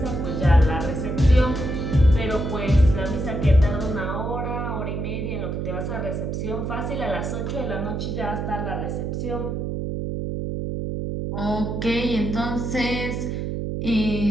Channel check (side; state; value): right; noise; hum, 3 dB below the sound